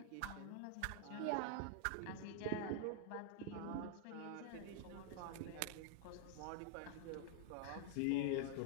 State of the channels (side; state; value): both; different; correlation 0.00